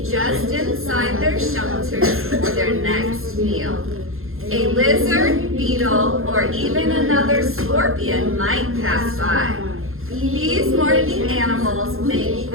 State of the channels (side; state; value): left; late; 0.61 ms